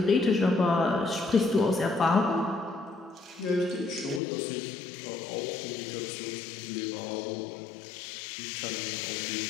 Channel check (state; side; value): drops out; right; at 4.2 s